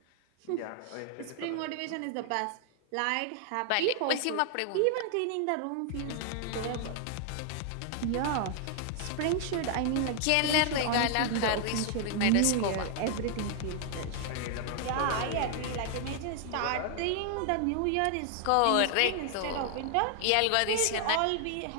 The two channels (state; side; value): different; both; correlation 0.00